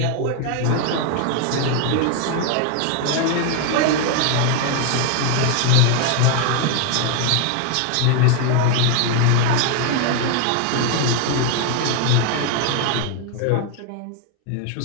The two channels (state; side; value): different; both; correlation 0.01